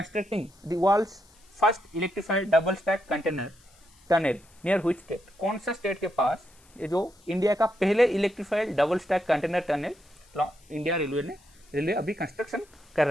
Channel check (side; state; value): left; noise; hiss, 29 dB below the sound